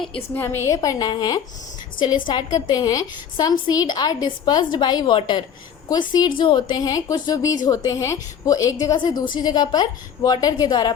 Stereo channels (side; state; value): right; quieter; 8.0 dB